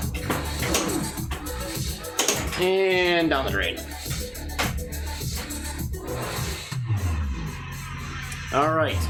And down the drain. All right.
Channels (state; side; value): identical; both; correlation 1.00